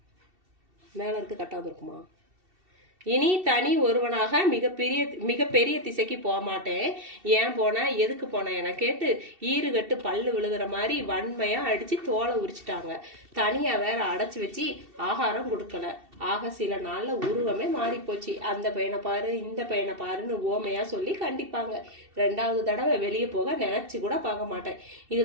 மேல இருக்கு கரெக்டா இருக்குமா? இனி தனி ஒருவனாக மிகப்பெரிய திசைக்கு போக மாட்டேன். ஏன் போன எதுக்கு போன என கேட்டு ஈறுகட்டு பல்லு விழுகிற மாதிரி வன்மையா அடிச்சு தோலை உரிச்சிட்டாங்க. தனியா வேற அடைச்சு வச்சு ஆகாரம் கொடுக்கல. ஆக சில நாள்ல உருவமே மாறி போச்சு. அந்த பையனை பாரு இந்த பையனை பாருன்னு ஓமையா சொல்லி கண்டிப்பாங்க. 2வது தடவை வெளியே போக நினைச்சு கூட பார்க்க மாட்டேன்.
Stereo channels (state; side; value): late; left; 2.7 ms